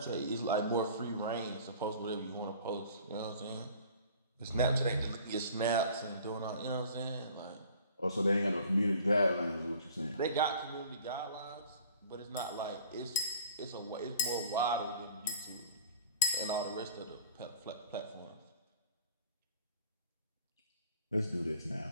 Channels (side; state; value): both; inverted; correlation -0.48